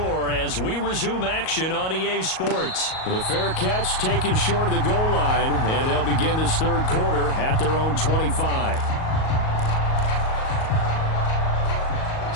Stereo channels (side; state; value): right; late; 38 ms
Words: as we resume action on EA Sports. The fair catch taken short of the goal line, and they'll begin this 3rd quarter at their own 25.